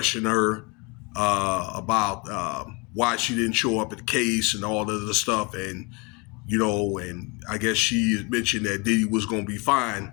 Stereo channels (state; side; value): quieter; right; 29.3 dB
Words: her about why she didn't show up at the case and all the other stuff. And, and I guess she mentioned that Diddy was going to be fine,